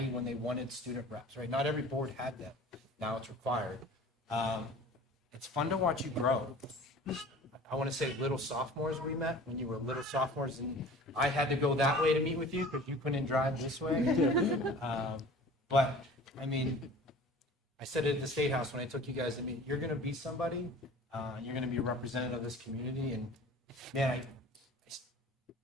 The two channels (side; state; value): both; normal; correlation 0.43